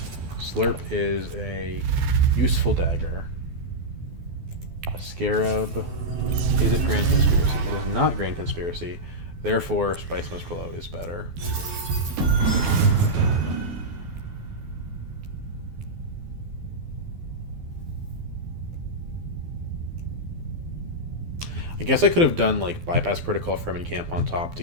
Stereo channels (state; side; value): late; left; 12 ms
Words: Slurp is a useful dagger. Scarab. Is it Grand Conspiracy? It is not Grand Conspiracy. Therefore, Spice Must Flow is better. I guess I could have done like Bypass Protocol Fremen Camp on top to